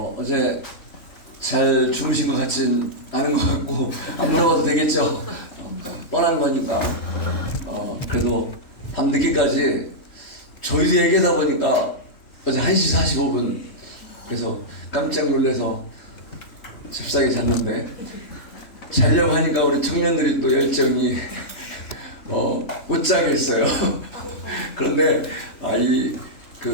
어제 잘 주무신 것 같진 않은 것 같고 안 물어봐도 되겠죠. 뻔한 거니까. 그래도 밤늦게까지 저희도 얘기하다 보니까 어제 1시 45분 그래서 깜짝 놀라서 잽싸게 잤는데 자려고 하니까 우리 청년들이 또 열정이 못 자겠어요. 그런데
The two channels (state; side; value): late; right; 3.4 ms